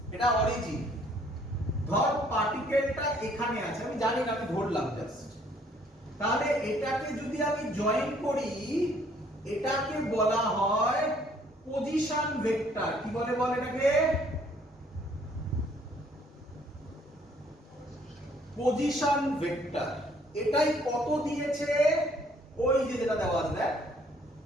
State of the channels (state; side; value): normal; both; correlation 0.62